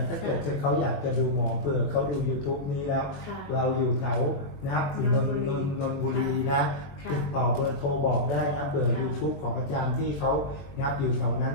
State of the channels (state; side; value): late; right; 21 ms